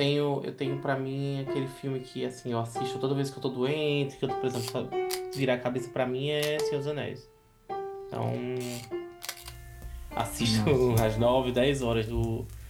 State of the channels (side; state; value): both; identical; correlation 1.00